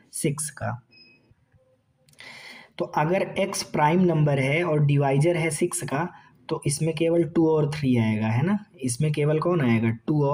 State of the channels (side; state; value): both; identical; correlation 1.00